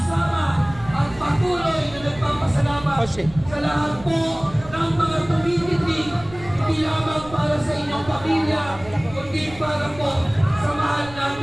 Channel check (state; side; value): noise; right; rumble, 18 dB below the sound